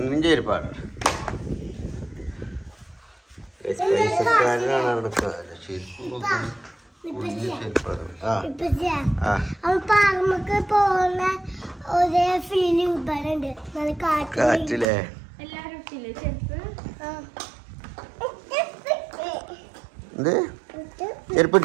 ചേരിപ്പാട് കാറ്റില്ലേ എന്ത്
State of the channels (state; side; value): drops out; left; at 14.9 s